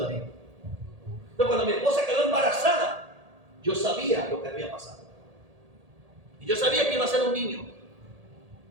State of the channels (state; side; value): late; left; 1.8 ms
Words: Entonces, cuando mi esposa quedó embarazada, yo sabía lo que había pasado. Y yo sabía que iba a ser un niño.